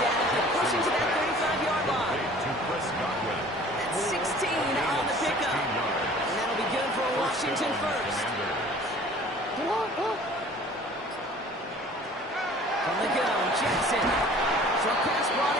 and pushing to that 35-yard line. That's 16 on the pickup. And that'll be good for Washington first. From the gun, Jackson. Short pass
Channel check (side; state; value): both; normal; correlation 0.49